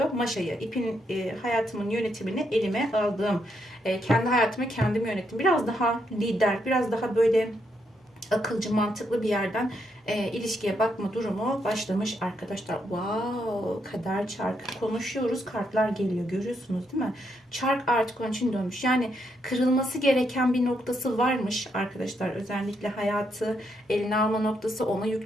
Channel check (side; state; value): both; normal; correlation 0.78